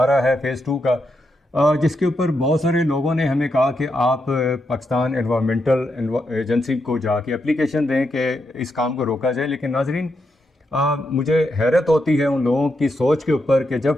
رہا ہے فیز 2 کا، جس کے اوپر بہت سارے لوگوں نے ہمیں کہا کہ آپ پاکستان انوائرمنٹل ایجنسی کو جا کے اپلیکیشن دیں کہ اس کام کو روکا جائے۔ لیکن ناظرین، مجھے حیرت ہوتی ہے ان لوگوں کی سوچ کے اوپر کہ جب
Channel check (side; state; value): both; normal; correlation 0.83